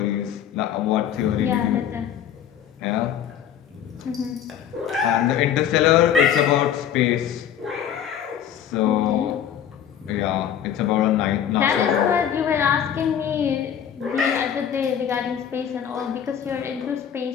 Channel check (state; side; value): quieter; right; 9.3 dB